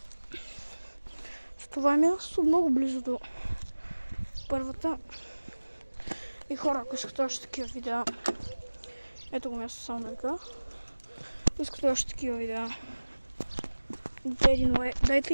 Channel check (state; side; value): inverted; both; correlation -1.00